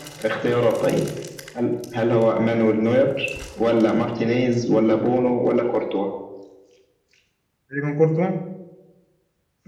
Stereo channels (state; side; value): identical; both; correlation 1.00